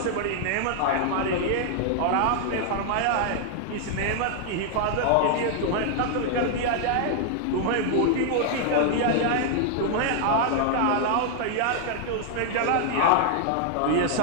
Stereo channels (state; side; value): different; both; correlation 0.00